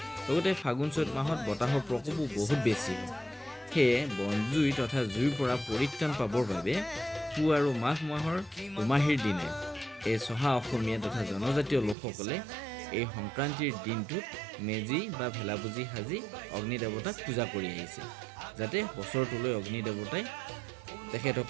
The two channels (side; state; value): left; drops out; at 12.0 s